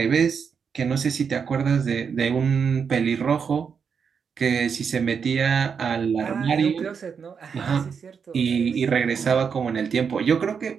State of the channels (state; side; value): quieter; left; 6.4 dB